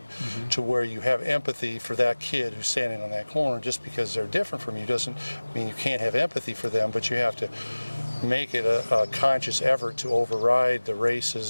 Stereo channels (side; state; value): both; inverted; correlation -1.00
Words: to where you have empathy for that kid who's standing on that corner? Just because they're different from you doesn't mean you can't have empathy for them, but you have to make it a conscious effort to override the